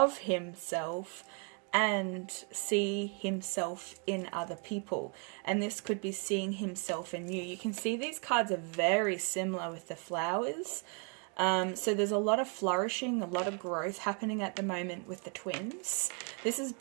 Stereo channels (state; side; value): quieter; left; 38.4 dB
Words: himself and see himself in other people. And this could be seeing himself in you. You can see these cards are very similar with the flowers. So there's a lot of flourishing, a lot of growth happening at the moment with the twins. This is